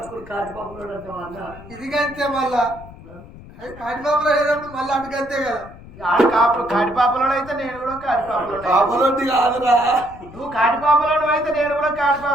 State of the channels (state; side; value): noise; left; rumble, 18 dB below the sound